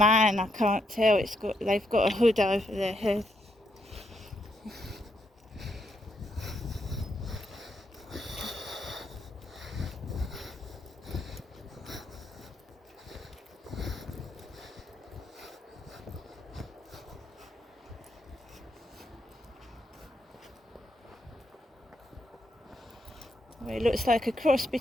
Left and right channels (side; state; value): both; normal; correlation 0.78